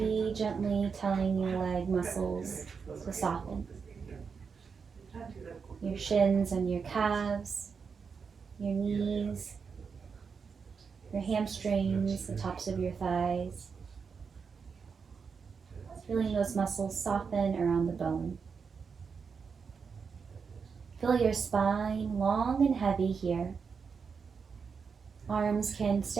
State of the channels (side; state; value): left; quieter; 5.7 dB